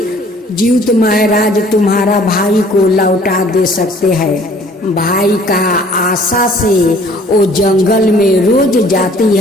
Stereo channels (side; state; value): both; normal; correlation 0.55